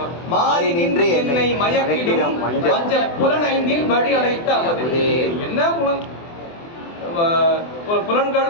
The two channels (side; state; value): right; late; 24 ms